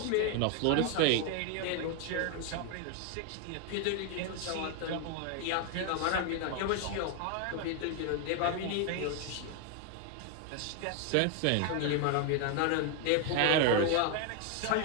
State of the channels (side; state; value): both; different; correlation 0.01